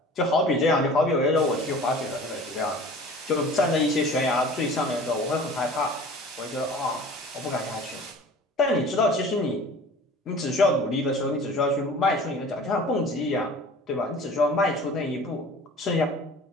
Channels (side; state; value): both; normal; correlation 0.43